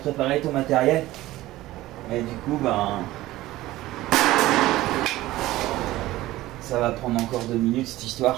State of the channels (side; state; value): left; quieter; 16.7 dB